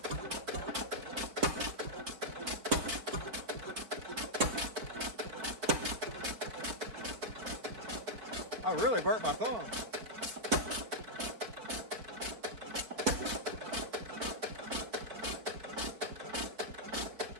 I really burnt my thumb.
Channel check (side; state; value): left; late; 4.7 ms